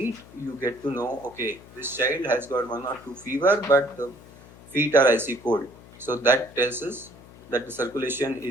you get to know, okay, this child has got 1 or 2 fever, but the feet are icy cold. So that tells us that the circulation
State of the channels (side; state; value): left; noise; hum, 21 dB below the sound